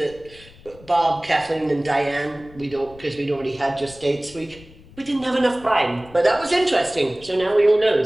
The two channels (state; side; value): noise; left; rumble, 22 dB below the sound